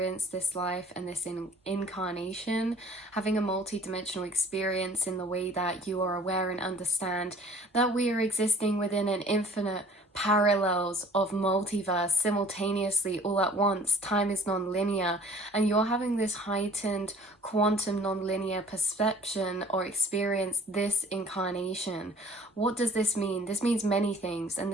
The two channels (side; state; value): both; normal; correlation 0.51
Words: this life and this incarnation, having a multi-dimensional experience in the way that you are aware and understand that we are existing within an infinite parallels of multiverse simultaneously all at once. Time is non-linear, and you're having this heightened quantum non-linear perception or experience this incarnation. What does this mean? This means many things, and